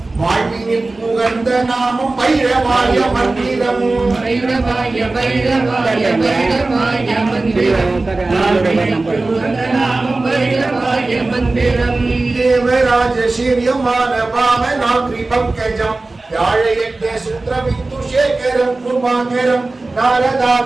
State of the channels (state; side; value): quieter; left; 3.3 dB